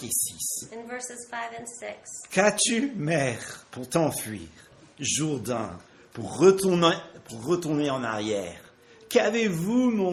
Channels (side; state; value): both; identical; correlation 1.00